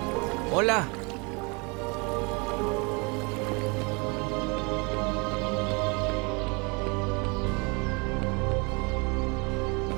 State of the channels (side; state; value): left; quieter; 30.0 dB